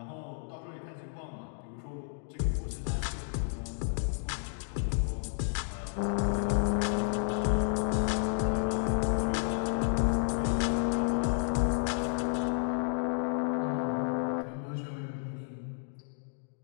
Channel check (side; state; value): right; silent; digital silence